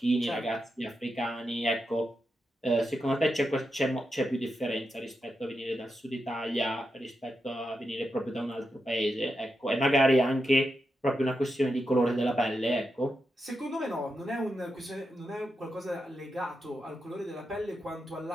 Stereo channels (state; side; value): normal; both; correlation 0.87